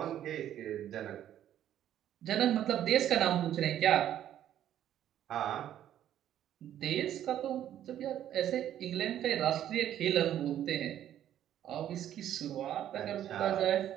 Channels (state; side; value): quieter; left; 11.2 dB